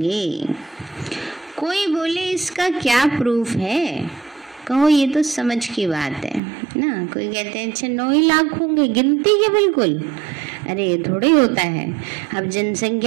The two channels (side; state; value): left; drops out; at 6.4 s